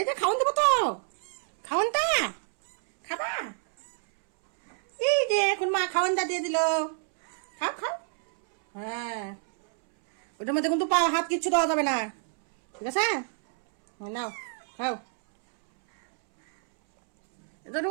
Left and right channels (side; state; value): left; silent; 60 dB below the other